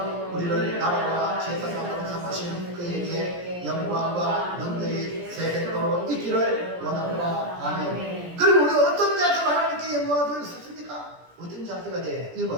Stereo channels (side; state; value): left; late; 17 ms